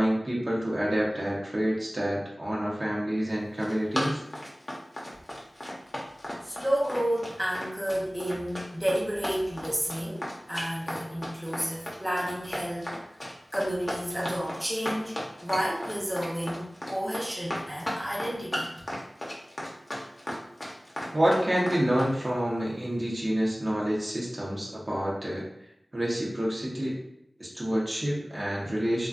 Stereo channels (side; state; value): both; normal; correlation 0.98